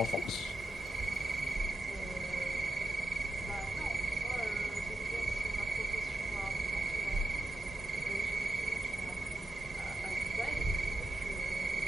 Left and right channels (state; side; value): normal; both; correlation 0.89